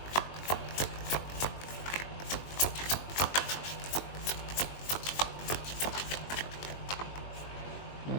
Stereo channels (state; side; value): late; right; 21 ms